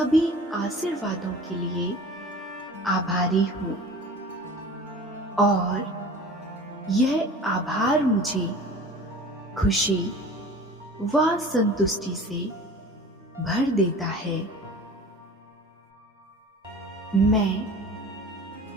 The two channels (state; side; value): normal; both; correlation 0.41